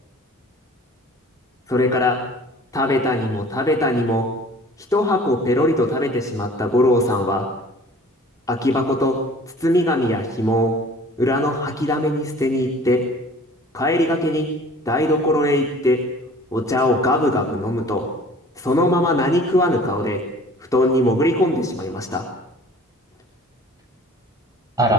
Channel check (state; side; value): normal; both; correlation 0.48